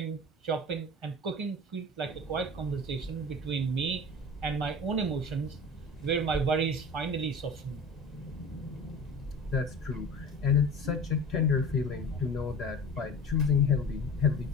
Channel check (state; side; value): normal; both; correlation 0.37